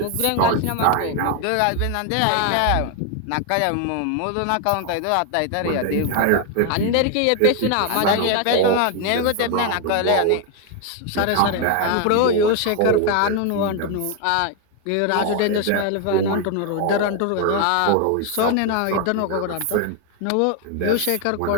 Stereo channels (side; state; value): both; different; correlation 0.01